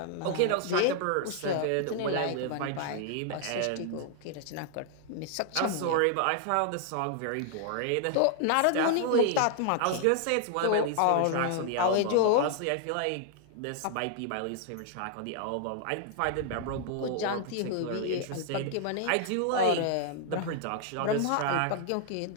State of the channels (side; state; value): both; different; correlation 0.00